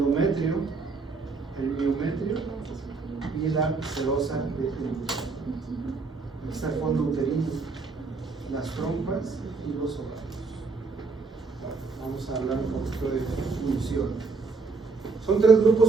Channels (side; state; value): left; quieter; 4.3 dB